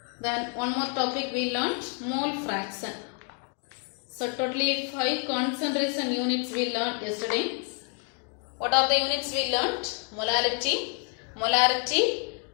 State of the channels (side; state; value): right; quieter; 37.1 dB